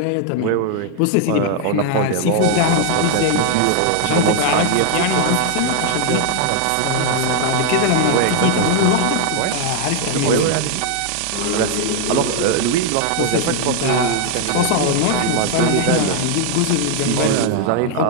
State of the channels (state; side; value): different; both; correlation 0.00